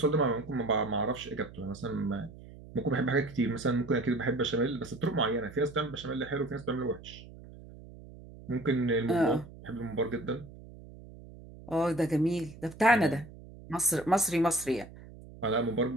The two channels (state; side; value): noise; right; hum, 17 dB below the sound